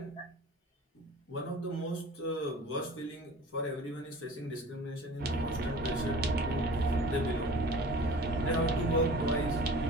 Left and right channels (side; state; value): both; normal; correlation 0.42